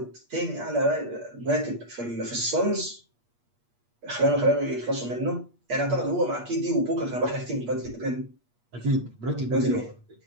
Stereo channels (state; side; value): late; left; 8.4 ms